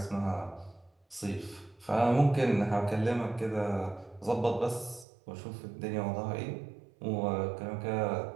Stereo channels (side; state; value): left; drops out; at 5.1 s